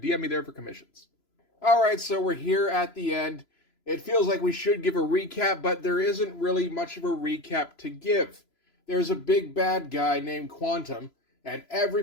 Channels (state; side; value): late; right; 3.0 ms